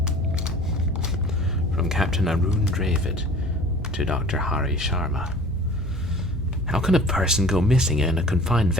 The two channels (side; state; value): both; normal; correlation 0.45